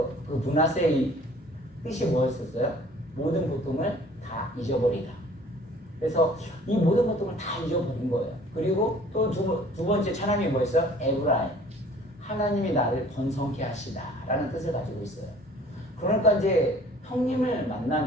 그 므낫세의 뜻이 뭐였었어요? 모든 고통을 다 잊어버리다. 그래서 이 모든 고통을 다 잊어버린 거예요. 그리고 또 두 번째 찬양이 뭐였어요? 에브라임. 하나님이 나를 번성케 하시다 라는 뜻을 가지고 있어요. 그러니까 이제 형님을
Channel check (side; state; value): both; normal; correlation 0.52